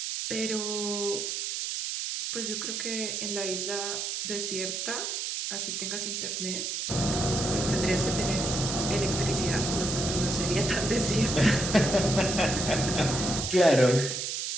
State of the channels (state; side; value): noise; right; hiss, 3 dB below the sound